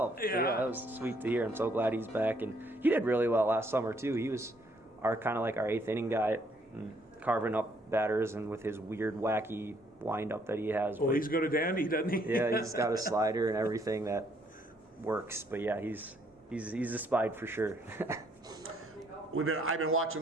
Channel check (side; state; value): both; normal; correlation 0.67